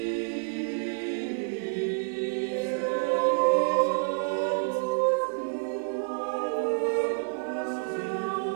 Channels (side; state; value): left; silent; 59 dB below the other